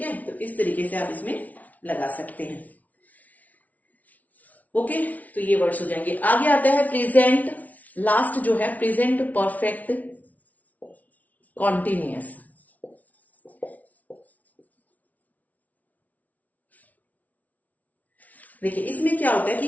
है, तो इस तरीके से आप इसमें लगा सकते हैं। ओके, तो ये वर्ड्स हो जाएंगे। आगे आता है प्रेजेंट, लास्ट जो है प्रेजेंट परफेक्ट कॉन्टिन्यूअस। देखिए इसमें क्या होता है कि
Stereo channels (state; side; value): late; right; 0.073 ms